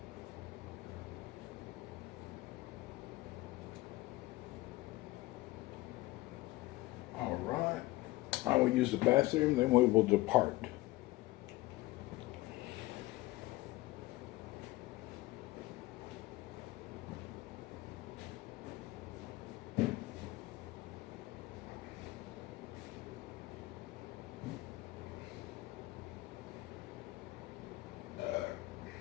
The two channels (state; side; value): quieter; right; 19.2 dB